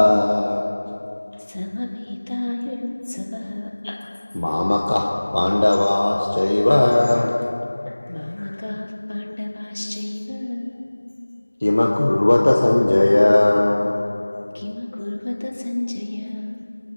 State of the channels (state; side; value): inverted; both; correlation -1.00